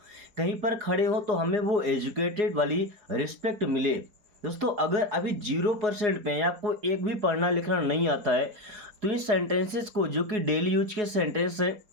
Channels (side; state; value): left; late; 4.8 ms